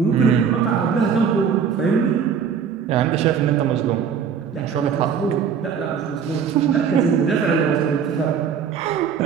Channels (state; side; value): quieter; left; 7.0 dB